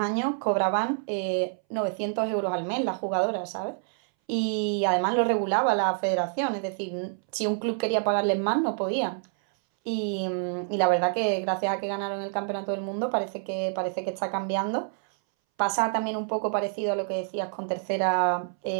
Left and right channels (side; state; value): left; silent; 60 dB below the other